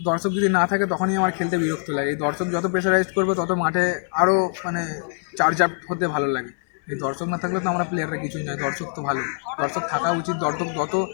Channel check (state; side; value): silent; right; 63 dB below the other